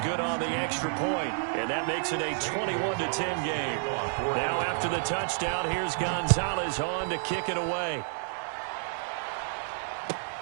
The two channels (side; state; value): left; silent; digital silence